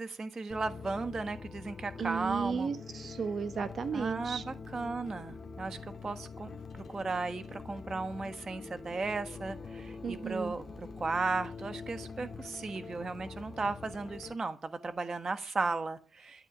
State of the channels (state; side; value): quieter; left; 3.1 dB